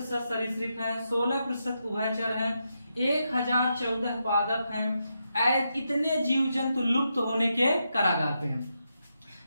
सरीसृप हैं, 16% उभयचर हैं, 1014 पादप हैं। इतने जीव जंतु लुप्त होने के कगार पे हैं।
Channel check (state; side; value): inverted; both; correlation -0.84